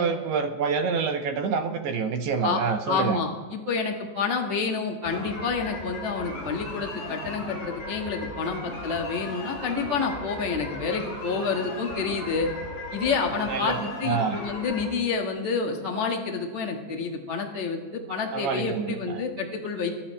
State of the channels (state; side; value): late; left; 14 ms